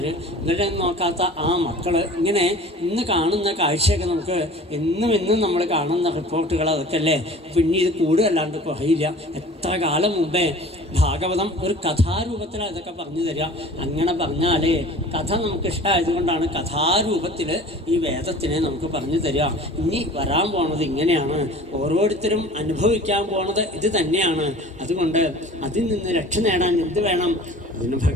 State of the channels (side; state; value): both; normal; correlation 0.43